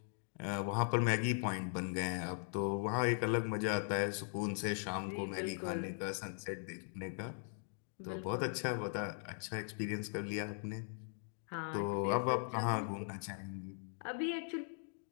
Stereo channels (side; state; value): right; silent; digital silence